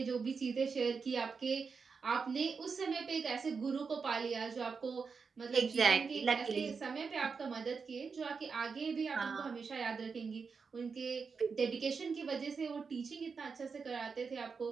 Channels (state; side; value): quieter; left; 5.3 dB